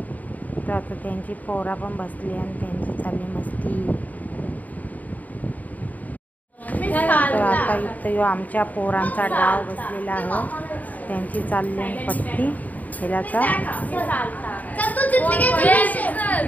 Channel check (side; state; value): right; late; 0.076 ms